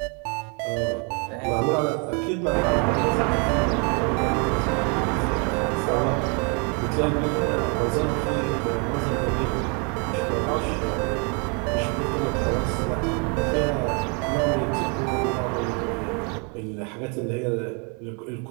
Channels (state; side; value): quieter; left; 35.0 dB